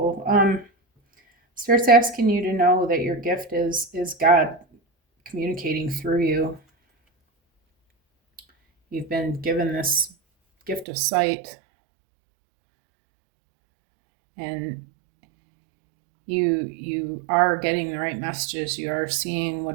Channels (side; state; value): left; drops out; at 10.9 s